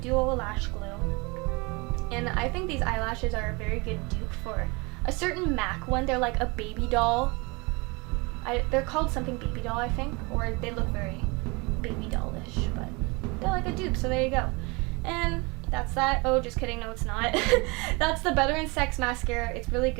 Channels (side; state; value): left; quieter; 27.5 dB